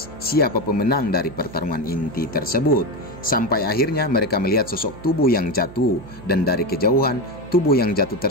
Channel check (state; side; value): noise; right; hum, 18 dB below the sound